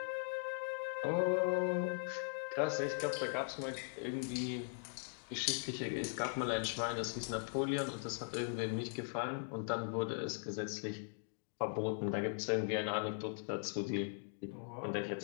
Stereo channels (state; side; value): silent; right; digital silence